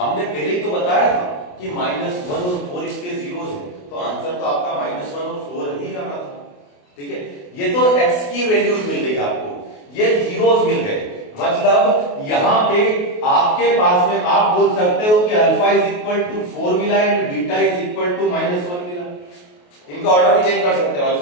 पहले ही तो बताया था कि -1 और 4 इसके जीरोस है, तो आंसर तो आपका -1 और 4 ठीक है, ये तो x की वैल्यूज मिल गई आपको, ये जीरोस मिल गए, मतलब यहां पे आपके पास में आप बोल सकते हो कि अल्फा इज इक्वल टू 4 मिला and beta is equal to -1 मिला। इनका ऑर्डर भी चेंज कर सकते हो,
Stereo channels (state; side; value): late; right; 28 ms